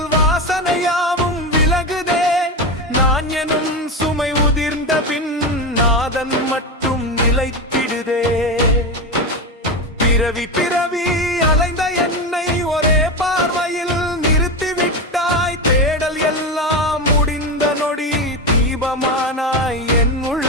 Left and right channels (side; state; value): both; normal; correlation 0.17